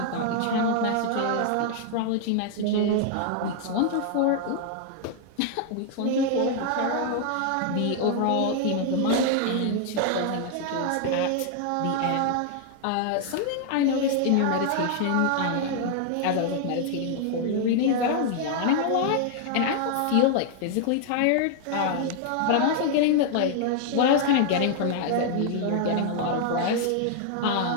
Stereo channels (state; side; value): different; both; correlation 0.00